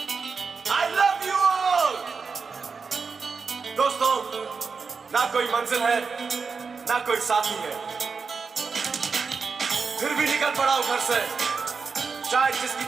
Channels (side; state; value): left; quieter; 5.1 dB